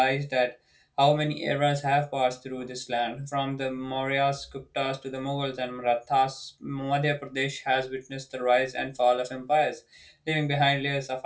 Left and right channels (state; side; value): identical; both; correlation 1.00